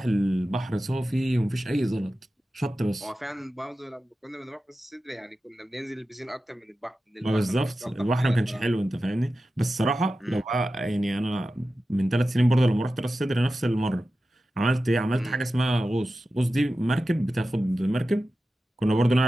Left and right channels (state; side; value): normal; both; correlation 0.93